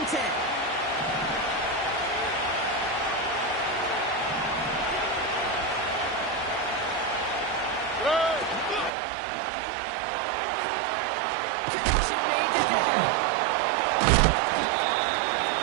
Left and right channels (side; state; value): left; drops out; at 8.9 s